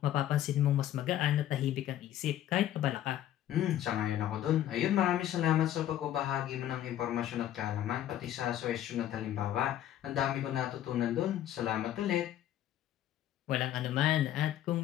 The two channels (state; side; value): quieter; right; 12.0 dB